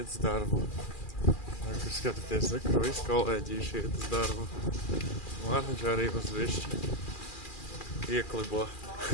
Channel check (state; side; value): late; right; 2.4 ms